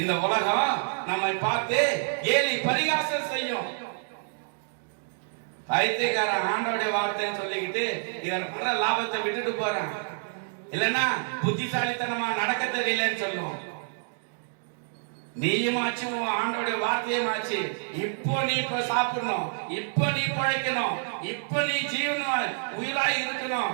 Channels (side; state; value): left; silent; digital silence